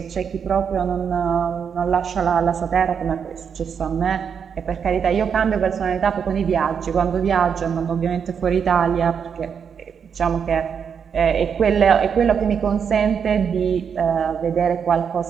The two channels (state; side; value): quieter; left; 7.0 dB